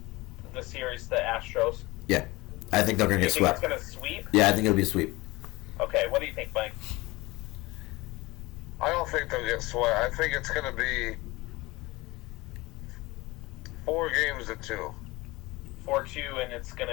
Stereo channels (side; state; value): right; quieter; 21.6 dB